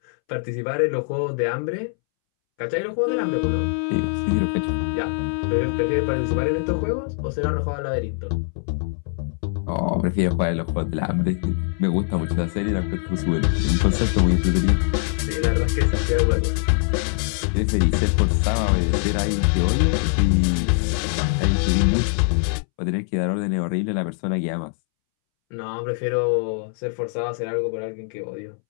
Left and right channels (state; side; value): silent; right; 64 dB below the other